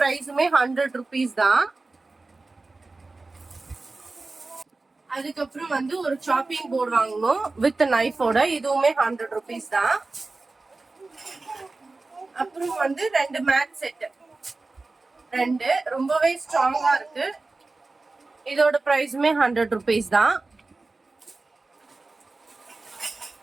100 rupees தான். அதுக்கப்புறம் வந்து ஒரு சாப்பிங் போர்டு வாங்கணும் வித் நைஃபோட, இதுவுமே 100 rupees தான். அப்புறம் வந்து 2 மேட் செட், 2 ரொம்பவே ஸ்ட்ராங்கா இருக்கு. இதோட பிரைஸுமே 100 rupees தான்.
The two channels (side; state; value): left; quieter; 3.5 dB